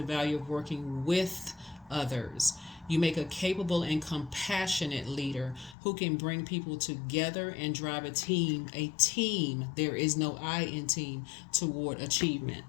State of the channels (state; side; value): drops out; right; at 5.8 s